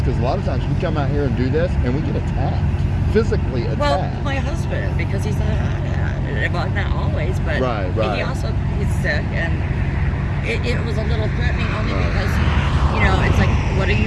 because a lot of times we come out here and do this, and we get attacked, physically attacked. Well, my husband, because he's a hothead. Well, not always, but Right. he's sick, and it was a little threatening only because, it's like, what are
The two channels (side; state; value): both; identical; correlation 1.00